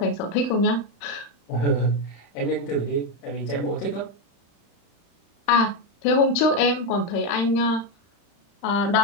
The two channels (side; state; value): right; late; 35 ms